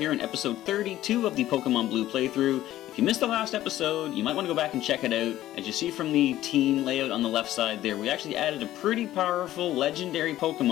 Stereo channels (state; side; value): quieter; right; 14.1 dB